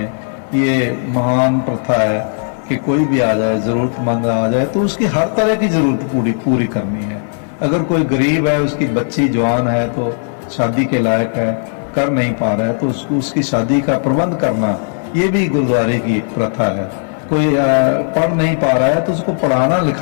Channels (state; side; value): silent; right; digital silence